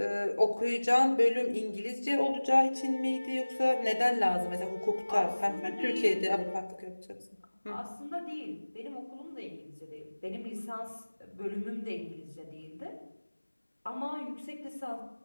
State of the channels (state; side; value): inverted; both; correlation -1.00